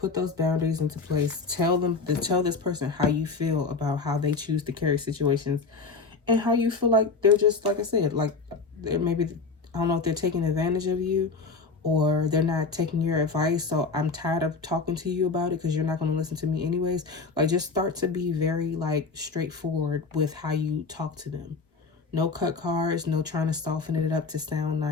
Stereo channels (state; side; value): quieter; right; 4.4 dB